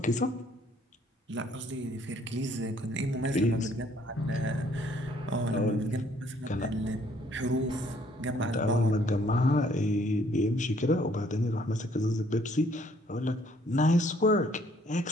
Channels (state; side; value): normal; both; correlation 0.63